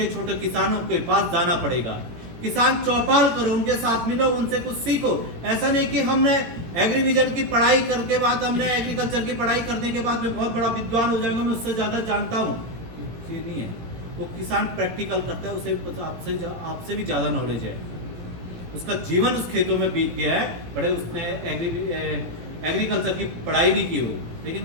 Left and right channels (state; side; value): late; left; 17 ms